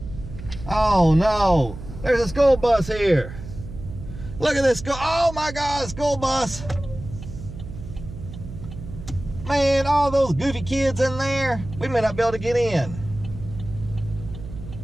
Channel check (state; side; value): noise; right; hum, 12 dB below the sound